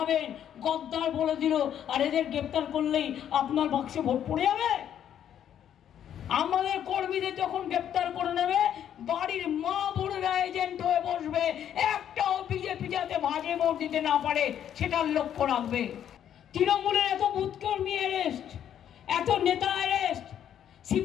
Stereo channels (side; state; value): right; quieter; 9.9 dB